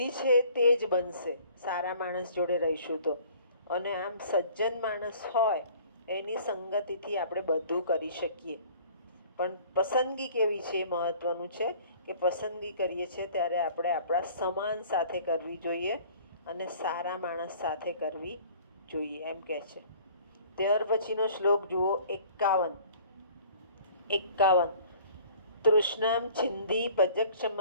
છે તે જ બનશે સારા માણસ જોડે રહીશું તો. અને આમ સજ્જન માણસ હોય એની સંગતિથી આપણે બધું કરી શકીએ. પણ પસંદગી કેવી છે એ મહત્વનું છે કે પસંદગી કરીએ છીએ ત્યારે આપણે આપણા સમાન સાથે કરવી જોઈએ અને સારા માણસ સાથે કરવી જોઈએ એમ કહે છે. ત્યાર પછીનો શ્લોક જુઓ. 51. તૃષ્ણામ છિંધી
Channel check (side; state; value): both; inverted; correlation -0.51